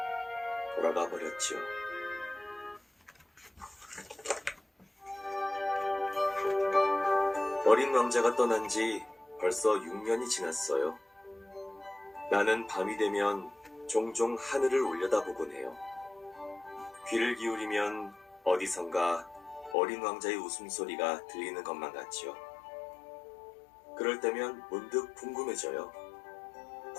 돌아가 버렸지요. 어린 왕자가 떠난 지 벌써 6년이 지났어요. 나는 밤이 되면 종종 하늘을 올려다보곤 해요. 귀를 기울이면 어디선가 어린 왕자의 웃음소리가 들리는 것만 같지요. 그럴 때면 문득 궁금해져요.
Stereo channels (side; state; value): right; drops out; at 19.8 s